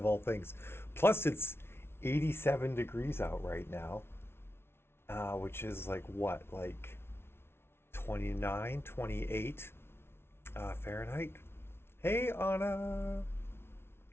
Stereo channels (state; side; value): late; right; 0.12 ms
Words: all things. Plus it's 87 degrees out right now, which is like what, like 29, 28 Fahrenheit. Hey Anna,